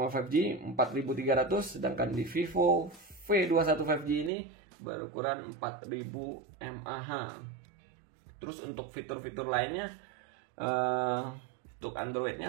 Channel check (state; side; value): drops out; left; at 4.3 s